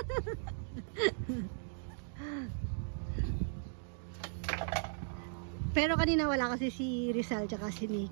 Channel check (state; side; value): silent; left; digital silence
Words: Pero kanina wala kasi si Rizal tsaka si